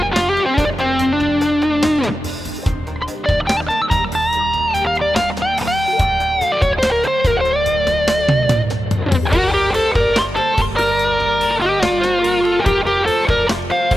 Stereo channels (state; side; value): normal; both; correlation 0.92